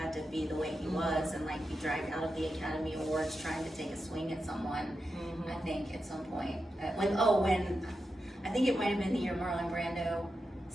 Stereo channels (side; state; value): both; normal; correlation 0.89